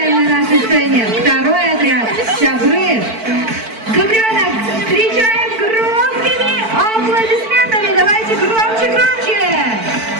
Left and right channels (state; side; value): late; left; 4.5 ms